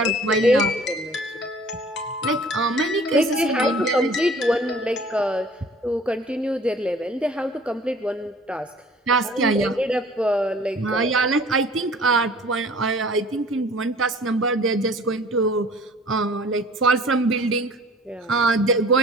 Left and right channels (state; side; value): normal; both; correlation 0.49